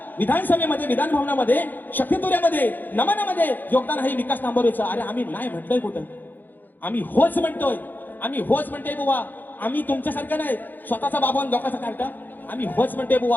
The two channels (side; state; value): right; late; 0.088 ms